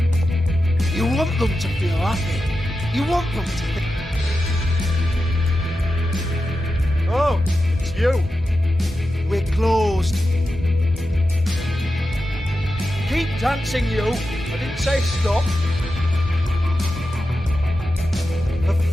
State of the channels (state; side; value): normal; both; correlation 0.90